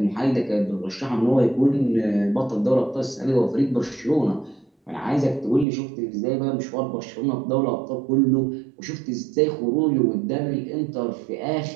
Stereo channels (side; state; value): left; drops out; at 5.7 s